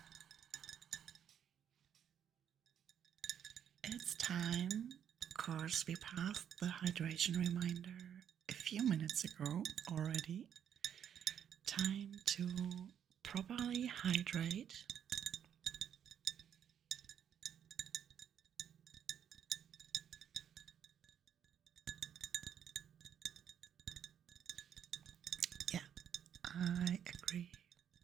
it's time. Of course, we passed the hydration reminder a few minutes ago already. Time to properly hydrate. Yeah, I agree.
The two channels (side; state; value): left; quieter; 9.1 dB